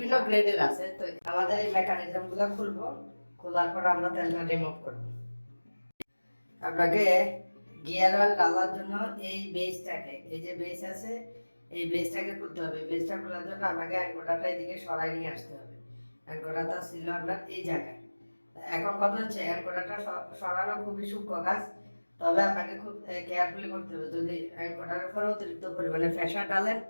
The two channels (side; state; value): both; inverted; correlation -1.00